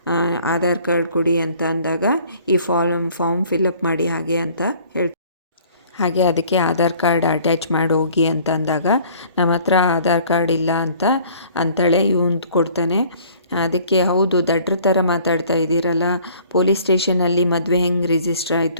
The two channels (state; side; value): inverted; both; correlation -0.54